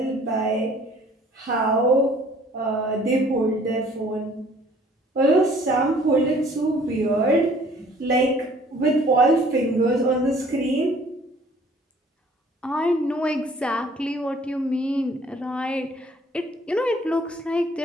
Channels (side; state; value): both; normal; correlation 0.55